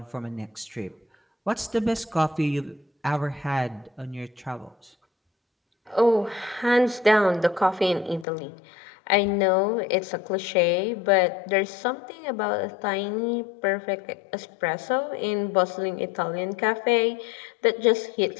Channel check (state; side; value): drops out; right; at 8.2 s